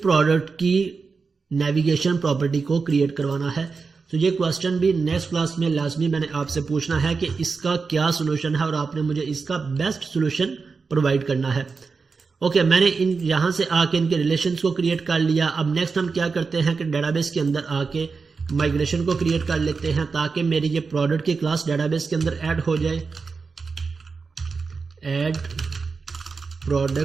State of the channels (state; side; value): quieter; left; 4.7 dB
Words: प्रोडक्ट की नेविगेशन प्रॉपर्टी को क्रिएट करवाना है। तो ये क्वेश्चन भी नेक्स्ट क्लास में लाजमी मैंने आपसे पूछना है कि इसका क्या सोल्यूशन है और आपने मुझे इसका बेस्ट सोल्यूशन प्रोवाइड करना है। ओके, मैंने यहाँ से आके इनके रिलेशंस को क्रिएट कर लिया। अब नेक्स्ट हम क्या करते हैं कि डेटाबेस के अंदर आके माइग्रेशन को क्रिएट कर लेते हैं ताकि मेरी ये प्रोडक्ट की क्लास डेटाबेस के अंदर ऐड हो जाए। ऐड